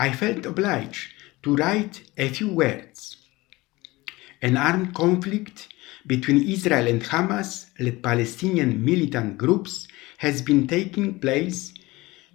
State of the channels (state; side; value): quieter; right; 20.9 dB